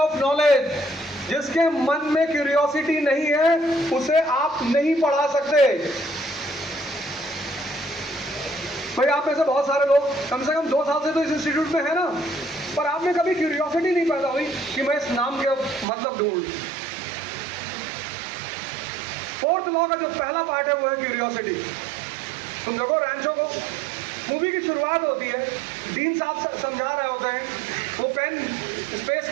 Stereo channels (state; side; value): drops out; left; at 15.9 s